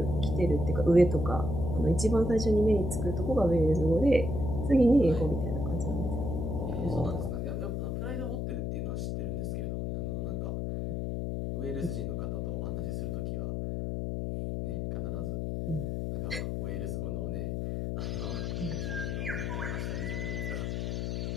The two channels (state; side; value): noise; left; hum, 1 dB below the sound